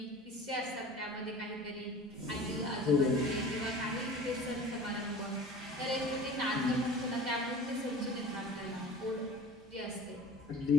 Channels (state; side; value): normal; both; correlation 0.40